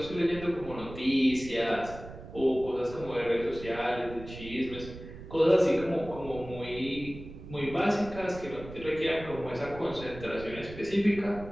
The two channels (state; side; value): noise; right; rumble, 14 dB below the sound